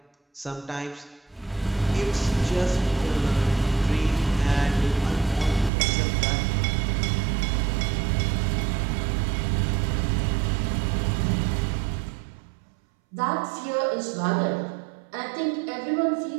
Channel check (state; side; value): drops out; left; at 5.7 s